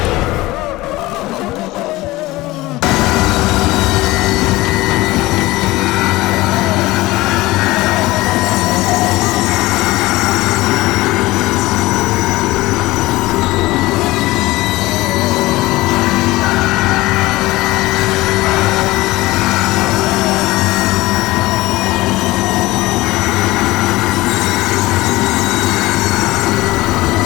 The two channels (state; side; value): quieter; right; 19.2 dB